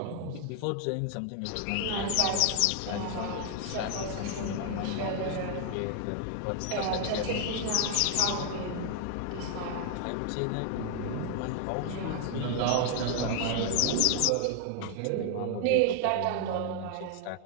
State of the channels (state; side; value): different; both; correlation 0.00